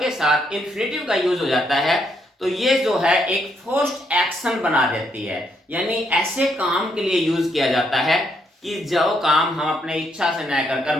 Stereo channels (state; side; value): normal; both; correlation 0.75